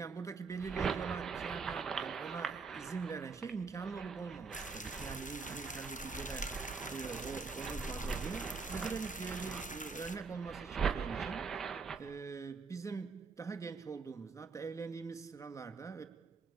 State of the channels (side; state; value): left; quieter; 4.9 dB